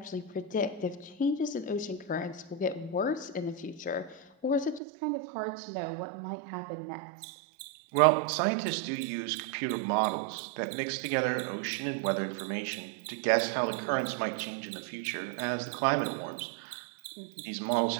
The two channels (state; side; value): drops out; left; at 4.8 s